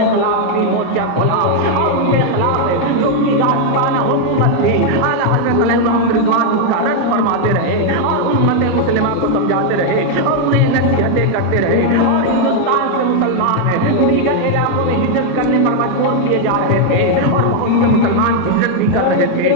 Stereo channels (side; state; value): both; different; correlation 0.00